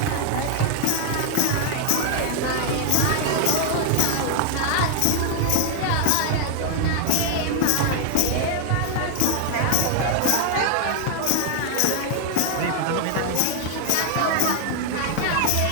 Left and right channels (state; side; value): different; both; correlation 0.00